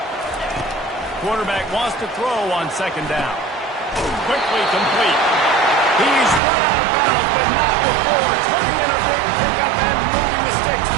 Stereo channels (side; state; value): left; drops out; at 6.4 s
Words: Quarterback wants to throw on second down. Quickly complete. He's run out of bounds, but not before turning in a big pickup and moving the sticks